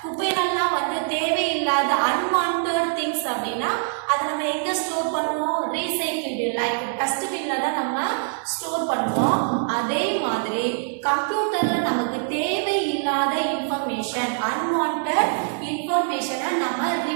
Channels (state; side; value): silent; left; 62 dB below the other